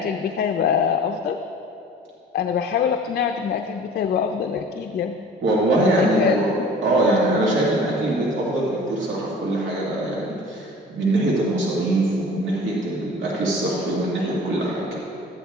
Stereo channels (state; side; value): normal; both; correlation 0.44